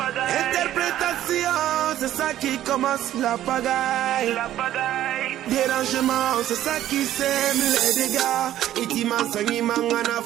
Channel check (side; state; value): left; quieter; 12.7 dB